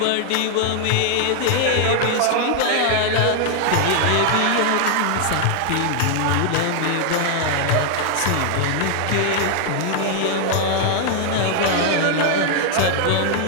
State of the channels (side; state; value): both; different; correlation 0.00